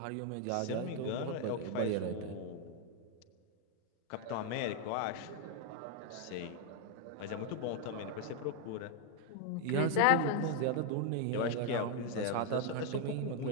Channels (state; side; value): different; both; correlation 0.00